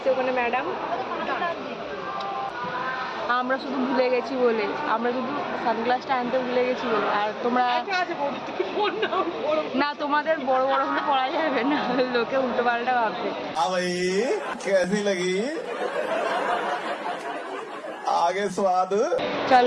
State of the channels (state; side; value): identical; both; correlation 1.00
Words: ওখানে ম্যাডাম। আমরা শুধু ভুলে গেছি বলে, আমরা শুধু সানগ্লাসটা আনতে ভুলে গেছি বলে। আর তোমরা না, তোমাদের বড় বড় হলে পড়া যাবে না, লোকে উল্টো পাল্টা ভাববে। आगे स्वाद।